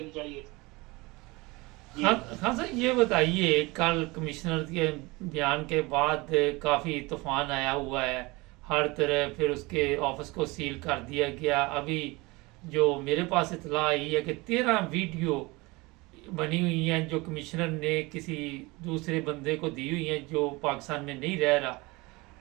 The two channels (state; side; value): quieter; left; 23.8 dB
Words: चाहिए थी। हाँ सर, ये बताइए, कल कमिश्नर के बयान के बाद काफ़ी तूफान आया हुआ है हर तरह, फिर उसके ऑफिस को सील कर दिया गया। अभी जो मेरे पास इतला आई है कि 13 वीडियो बनी हुई हैं जो कमिश्नर ने किसी दूसरे बंदे को दी हुई हैं जो पाकिस्तान में नहीं रह रहा,